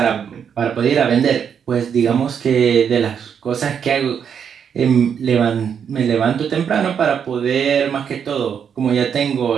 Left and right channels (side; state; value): left; quieter; 7.6 dB